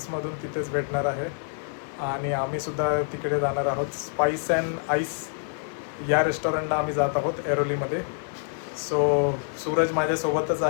तिथेच भेटणार आहे आणि आम्हीसुद्धा तिकडे जाणार आहोत. स्पाइस अँड आईस या रेस्टॉरंटला आम्ही जात आहोत ऐरोलीमध्ये. सो सूरज माझ्यासोबतच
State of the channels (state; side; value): silent; right; 60 dB below the other